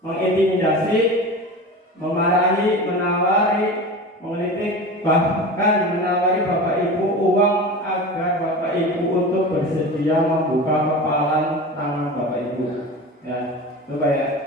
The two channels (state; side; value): normal; both; correlation 0.31